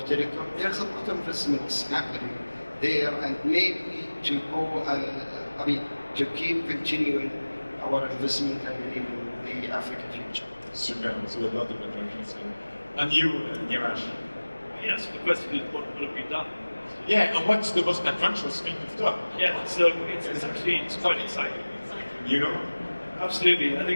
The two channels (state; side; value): inverted; both; correlation -1.00